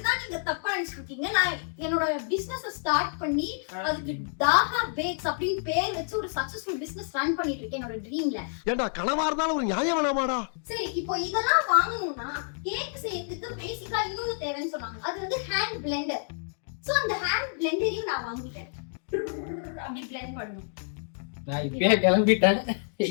நீங்க தப்பா நினைச்சிருக்கீங்க. நான் என்னோட பிசினஸ் ஸ்டார்ட் பண்ணி அதுக்கு டாகா பேக்ஸ் அப்படின்னு பேர் வச்சு ஒரு சக்சஸ்ஃபுல் பிசினஸ் ரன் பண்ணிட்டு இருக்கேன் என்னோட ட்ரீம்ல. ஏண்டா கனவா இருந்தாலும் ஒரு நியாயம் வேணாமாடா? சரி, இப்போ இதெல்லாம் வாங்கணும்னா கேக் செய்யறதுக்கு பேசிக்கா இன்னொரு தேவைன்னு சொன்னாங்க. அது வந்து ஹேண்ட் பிளெண்டர். சோ அந்த ஹேண்ட் பிளெண்டரையும் நான் வாங்கிட்டேன். அப்படி பிளெண்ட் பண்ணனும். நான் இப்பவே கிளம்பிட்டேன்,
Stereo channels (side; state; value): right; silent; digital silence